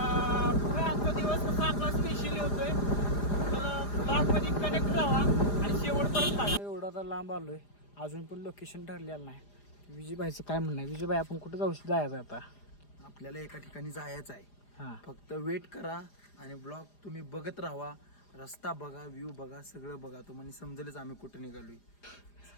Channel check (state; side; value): late; right; 4.9 ms